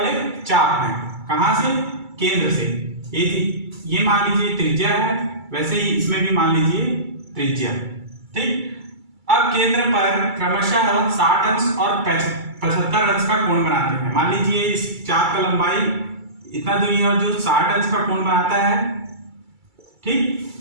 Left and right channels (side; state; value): left; late; 2.3 ms